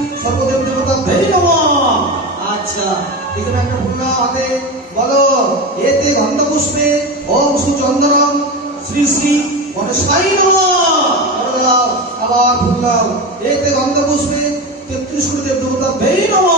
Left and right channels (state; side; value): normal; both; correlation 0.22